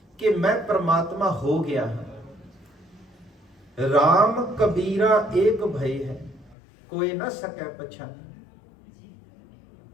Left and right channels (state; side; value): drops out; right; at 6.6 s